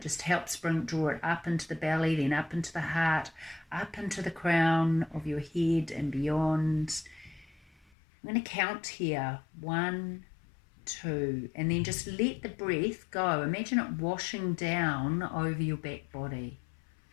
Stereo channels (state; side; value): drops out; right; at 7.9 s